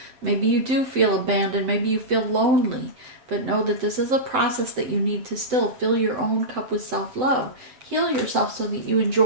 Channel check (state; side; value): late; left; 7.8 ms